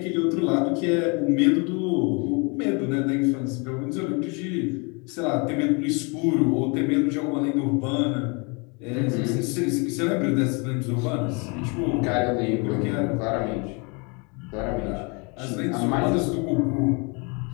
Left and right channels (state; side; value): quieter; right; 31.7 dB